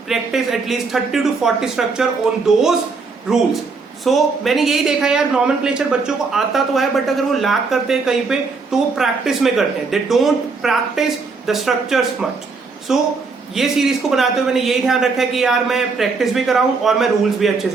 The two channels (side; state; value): left; quieter; 4.4 dB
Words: practice at least 30 to 40 structure on those rules. मैंने यही देखा यार, नॉमेनक्लेचर बच्चों को आता तो है बट अगर वो लैक करते हैं कहीं पे तो वो प्रैक्टिस में करते हैं. They don't practice the structures much. ये सीरीज को बनाते हुए मैंने यही ध्यान रखा है कि यार मैं प्रैक्टिस भी कराऊं और मैं रूल्स भी अच्छे